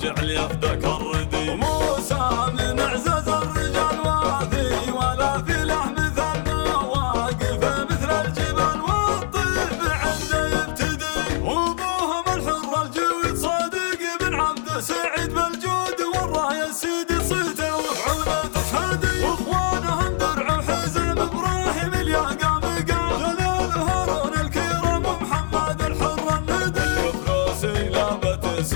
جعل يفدك الردي. وموسى من اعزاز الرجال وافي، ولا في له مثل ما واقف مثل الجبال، والطيب عنده يبتدي. وابوهم الحر الجويد صادق بن عبد سعيد بالجود، والرايه سيدي صيته وفعوله تشهدي. واخوانهم درع وحزم ابراهيم الياقام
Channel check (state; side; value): silent; right; 62 dB below the other